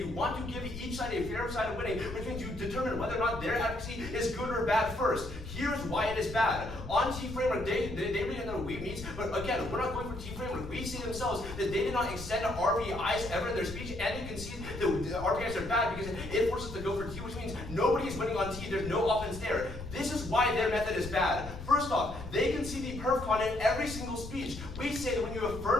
want to give each side a fair side of winning, which means you determine whether or not their advocacy is good or bad first. Here's why it is bad. On T framework, they really know we means, but again, we're not going for T framework. We see themselves that they did not extend to RPIs ever in their speech, and you can see the RPIs are bad because it forces us to go for T, which means nobody is winning on T. There's no offense there. This is why their method is bad. First off, they can see the perf con in every single speech. We say that when you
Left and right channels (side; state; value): left; noise; rumble, 10 dB below the sound